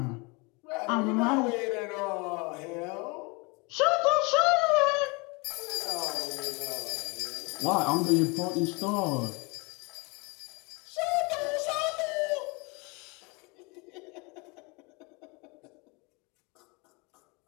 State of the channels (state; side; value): quieter; right; 28.6 dB